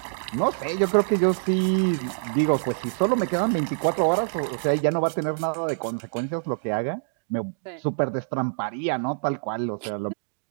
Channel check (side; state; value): left; silent; digital silence